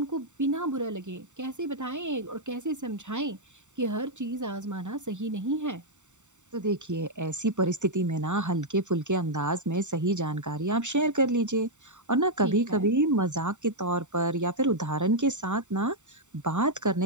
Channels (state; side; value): late; left; 0.84 ms